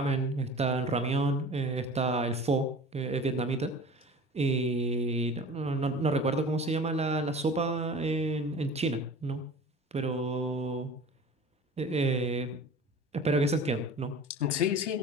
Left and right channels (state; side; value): normal; both; correlation 0.40